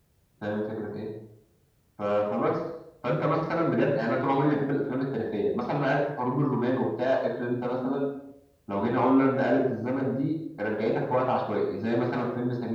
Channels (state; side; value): identical; both; correlation 1.00